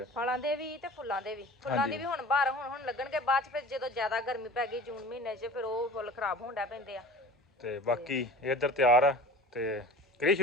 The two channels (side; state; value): both; normal; correlation 0.40